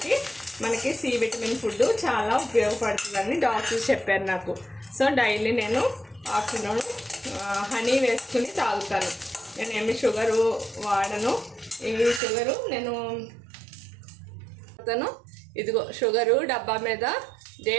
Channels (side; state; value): left; drops out; at 12.2 s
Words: మనకి సి విటమిన్ ఫుడ్ చాలా ఉపయోగపడుతుందని డాక్టర్స్ చెప్పారు నాకు. సో డైలీ నేను ఆఫ్టర్నూన్ హనీ వేసుకుని తాగుతాను. నేనేమి షుగరు వాడను. ఈ షుగరు నేను ఇదిగో షుగరు డబ్బా మీద